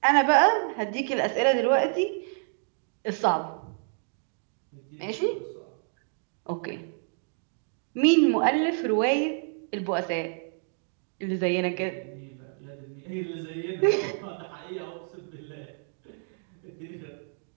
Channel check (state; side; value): silent; left; 59 dB below the other